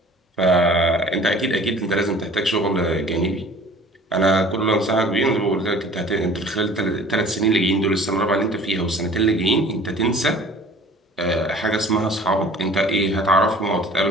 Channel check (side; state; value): both; normal; correlation 0.48